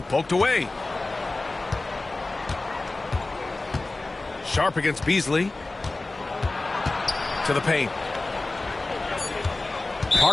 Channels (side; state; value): right; quieter; 3.1 dB